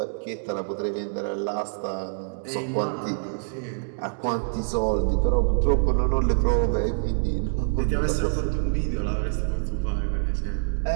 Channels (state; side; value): silent; left; digital silence